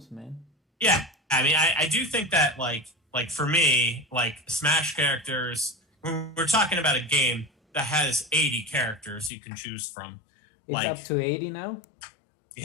man. Yeah, I mean, I do think that like for me, like Smash characters, we're talking about a game that has 80 characters you can choose from. It's up Like, to 80 now.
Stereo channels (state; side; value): drops out; right; at 9.3 s